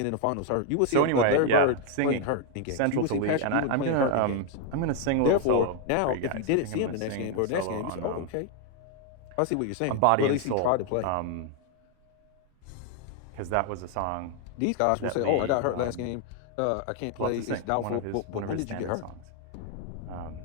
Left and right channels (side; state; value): both; different; correlation 0.01